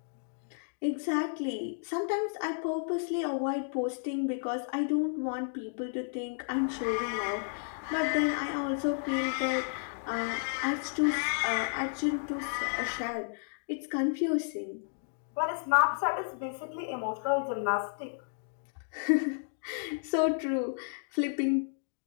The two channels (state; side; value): silent; right; digital silence